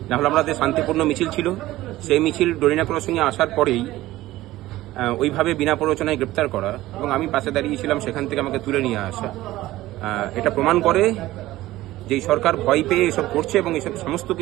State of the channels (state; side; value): quieter; left; 16.5 dB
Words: নাহলে আমাদের শান্তিপূর্ণ মিছিল ছিল, সেই মিছিল ডরিনা ক্রসিংয়ে আসার পরেই ওইভাবে বিনা প্ররোচনায় গ্রেপ্তার করা এবং আমি পাশে দাঁড়িয়েছিলাম, সেখান থেকে আমাকে তুলে নিয়ে আসা, এটা প্রমাণ করে যে সরকার ভয় পেয়ে এসব করছে এবং এসব সমস্ত